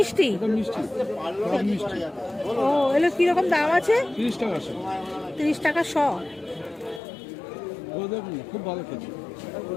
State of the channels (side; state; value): right; drops out; at 7.0 s